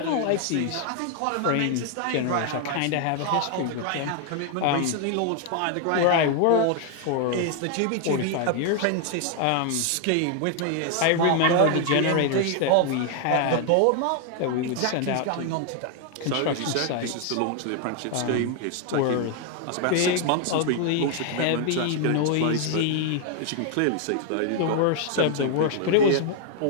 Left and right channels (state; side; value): different; both; correlation 0.00